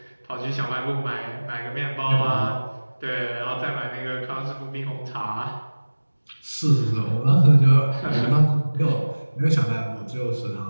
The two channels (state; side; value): inverted; both; correlation -1.00